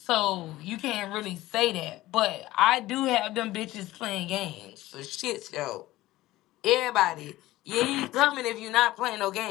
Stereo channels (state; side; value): quieter; right; 16.9 dB